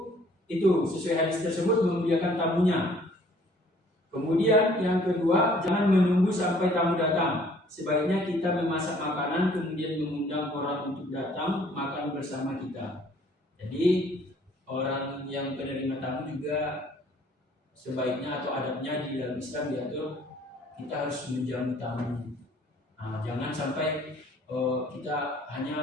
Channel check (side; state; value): both; normal; correlation 0.58